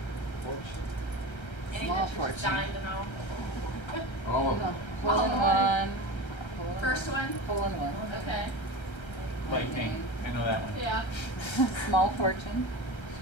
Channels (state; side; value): late; right; 1.3 ms